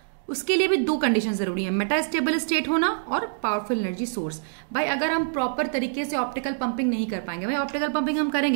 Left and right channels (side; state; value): left; silent; digital silence